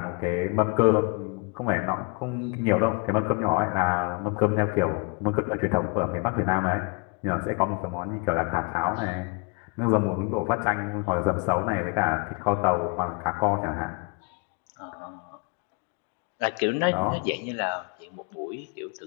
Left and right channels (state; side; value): quieter; right; 31.9 dB